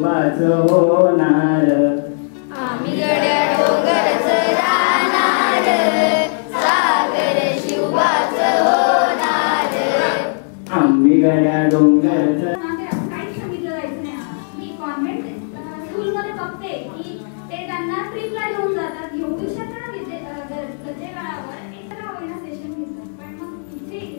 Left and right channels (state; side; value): silent; right; digital silence